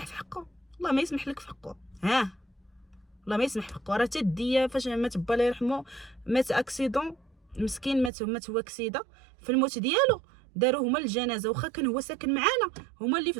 في حقه؟ والله ما يسمح لك في حقه، والله ما يسمح في حقه. راه تديه فاش مات با الله يرحمه، مات اكسيدون مسكين، مات هو اكسيده. في الموت ديالو داروا هما الجنازه، واخا كان هو ساكن معانا، هما اللي في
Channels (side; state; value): left; drops out; at 8.1 s